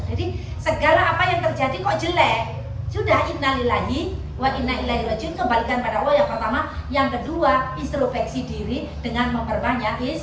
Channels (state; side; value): identical; both; correlation 1.00